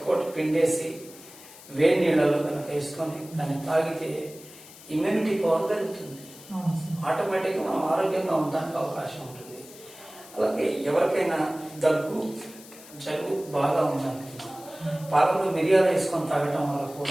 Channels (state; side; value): noise; left; hiss, 19 dB below the sound